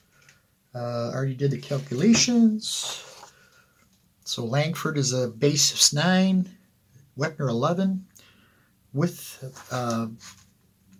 Already did the calculations. So Langford is a base of 9, Wepner 11. With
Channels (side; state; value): both; identical; correlation 1.00